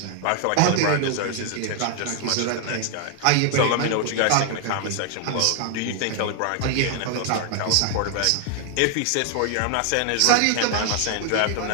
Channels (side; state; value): both; different; correlation 0.00